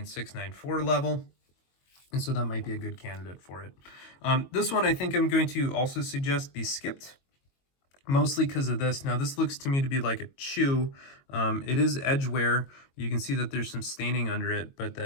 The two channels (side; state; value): right; late; 22 ms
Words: 9.4 level. And so that might be a good candidate for it. This one I think I'm going to also suggest be skipped, mostly because of this. Now this looks to me to be like a chew. It is edge wear. You can see that there's some staining under it, but